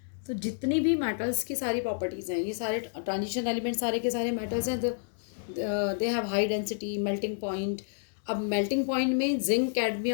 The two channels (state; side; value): silent; right; digital silence